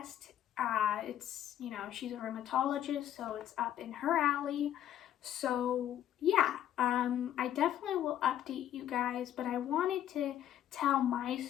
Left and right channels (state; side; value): quieter; right; 11.3 dB